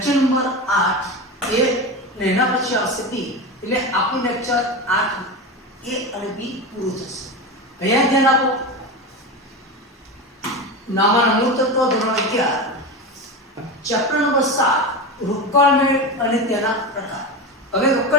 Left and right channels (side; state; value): both; normal; correlation 0.22